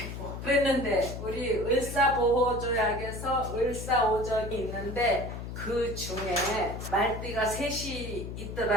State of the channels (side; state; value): left; noise; hum, 8 dB below the sound